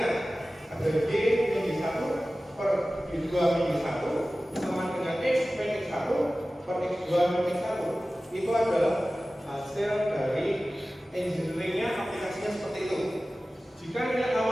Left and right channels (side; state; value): both; normal; correlation 0.96